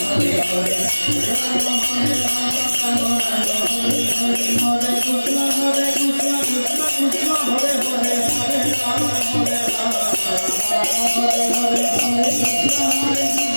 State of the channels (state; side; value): inverted; both; correlation -1.00